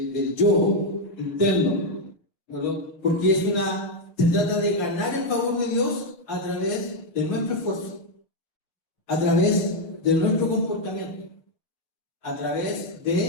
yo interno, ¿verdad? Porque se trata de ganar el favor de Dios a través de nuestro esfuerzo, a través de nuestro comportamiento, a través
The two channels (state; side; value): late; right; 6.1 ms